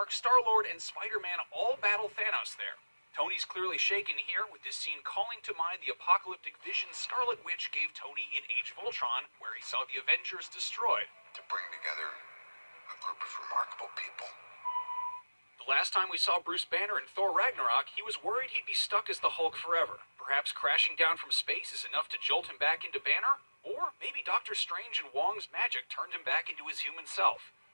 Star-Lord, and Spider-Man all battle Thanos there. Tony's clearly shaken here, with this scene calling to mind the apocalyptic vision Scarlet Witch gave Tony in Age of Ultron, where he saw the Avengers destroyed. To bring together a group of remarkable people. The last time we saw Bruce Banner in Thor Ragnarok, he was worried he'd be stuck as the Hulk forever. Perhaps crashing down from space is enough to jolt him back into Banner? Or maybe Doctor Strange and Wong's magic turned him back into his human self.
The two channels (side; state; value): both; inverted; correlation -1.00